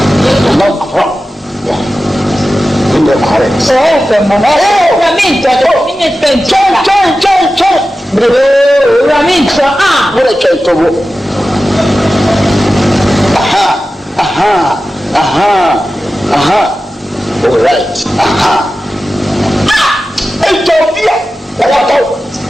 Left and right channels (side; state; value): both; normal; correlation 0.94